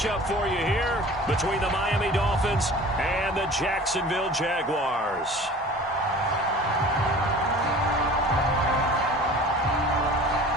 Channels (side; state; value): both; normal; correlation 0.43